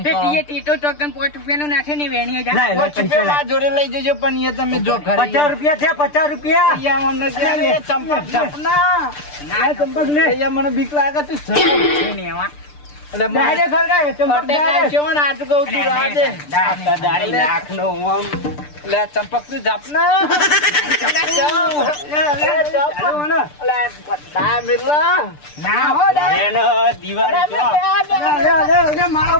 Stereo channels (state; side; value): late; right; 6.8 ms